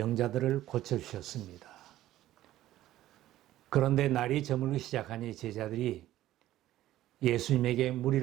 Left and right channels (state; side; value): quieter; left; 14.2 dB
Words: 고쳐주셨습니다. 그런데 날이 저물기 시작하니 제자들이 예수님에게